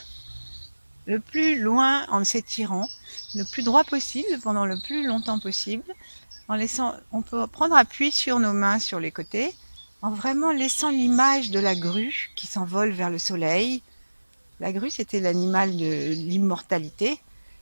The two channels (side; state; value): both; inverted; correlation -1.00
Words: le plus loin en s'étirant, le plus droit possible pendant le plus longtemps possible. On peut prendre appui sur nos mains sur les côtés, en vraiment laissant l'image de la grue qui s'envole vers le soleil. La grue, c'était l'animal de l'immortalité.